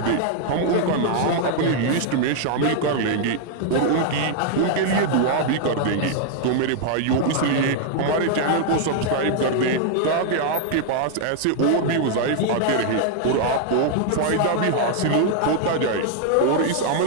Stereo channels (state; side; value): different; both; correlation 0.00